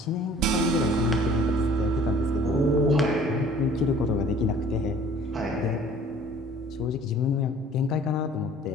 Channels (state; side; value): normal; both; correlation 0.52